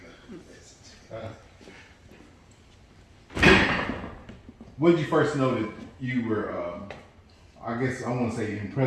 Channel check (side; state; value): both; identical; correlation 1.00